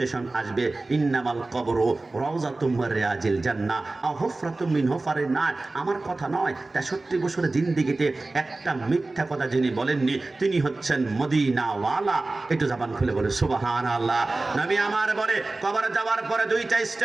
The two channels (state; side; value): quieter; left; 3.2 dB